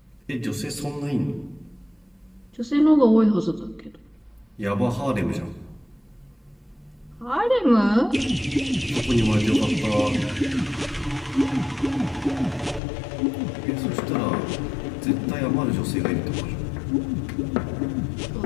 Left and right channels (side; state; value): right; drops out; at 12.8 s